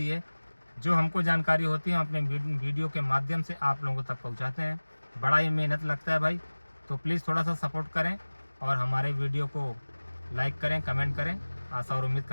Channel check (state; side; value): inverted; both; correlation -1.00